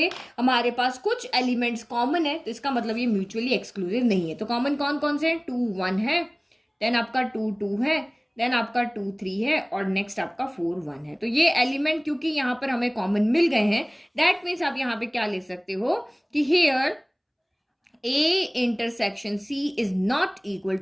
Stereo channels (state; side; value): identical; both; correlation 1.00